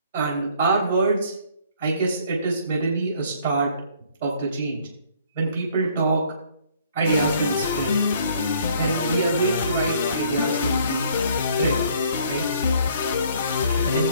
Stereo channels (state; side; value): inverted; both; correlation -0.60